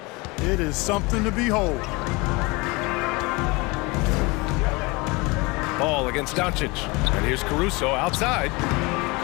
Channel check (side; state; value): right; quieter; 25.3 dB